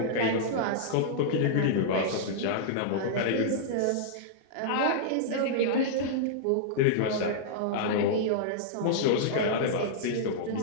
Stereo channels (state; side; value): different; both; correlation -0.02